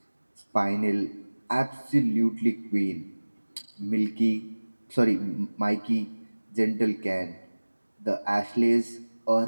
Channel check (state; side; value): inverted; both; correlation -1.00